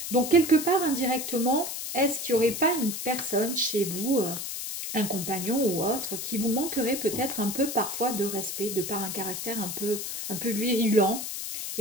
Donc quelque part indirectement, est-ce qu'il n'y aurait pas une personne chez vous, un compagnon ou autre, qui vous manquerait peut-être un peu parfois de respect, de par un caractère un peu virulent.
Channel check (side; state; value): left; noise; hiss, 5 dB below the sound